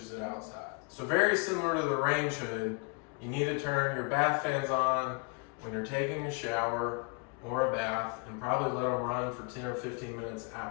it outside. So very similar to the range hood, you need to turn your bath fans on when you're taking a shower or a bath, and probably let them run for 10 or 15 minutes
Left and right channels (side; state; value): right; quieter; 33.0 dB